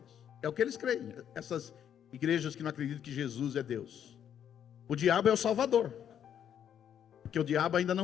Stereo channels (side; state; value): right; quieter; 9.3 dB